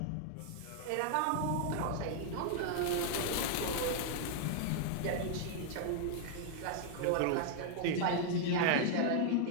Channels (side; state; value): both; different; correlation -0.01